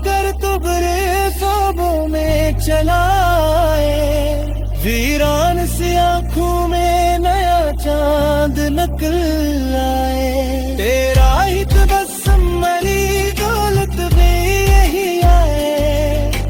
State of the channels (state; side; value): identical; both; correlation 1.00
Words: कर तो बरे ख्वाबों में चलाए, वीरान सी आंखों में नया चांद निकल आए। तेरा ही तबस्सुम मेरी दौलत भी यही आए,